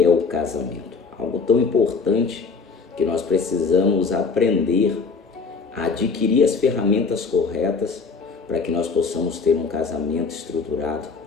é o casamento. Algo tão importante que nós precisamos aprender a adquirir as ferramentas corretas para que nós possamos ter um casamento estruturado,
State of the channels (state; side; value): quieter; right; 4.8 dB